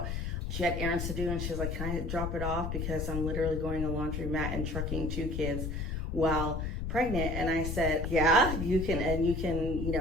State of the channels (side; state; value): left; noise; rumble, 3 dB below the sound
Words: She had errands to do, and she was like, can I drop it off? Because I'm literally going to laundromat and trucking 2 kids while pregnant. And I said, yeah, you can. And you